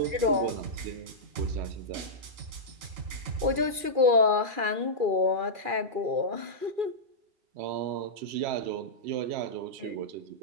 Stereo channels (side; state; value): left; late; 2.4 ms